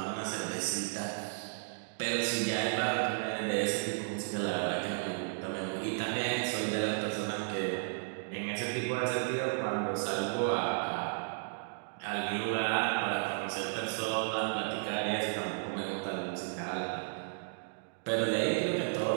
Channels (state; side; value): silent; left; digital silence